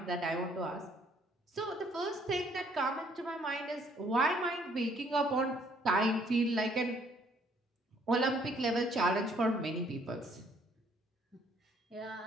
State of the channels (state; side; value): normal; both; correlation 0.64